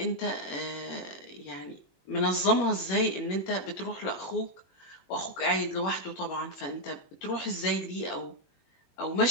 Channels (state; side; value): late; right; 21 ms